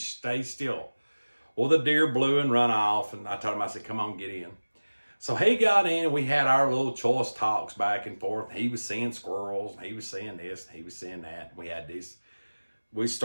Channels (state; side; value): inverted; both; correlation -1.00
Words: stay still. Well, the deer blew and run off, and I told him, I said, "Come on, get in." So he got in, and we had our little choice talks back and forth. He was seeing squirrels, and he was seeing this, and he was seeing that. We had this. We